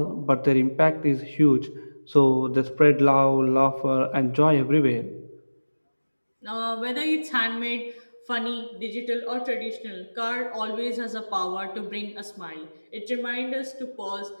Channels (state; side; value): inverted; both; correlation -1.00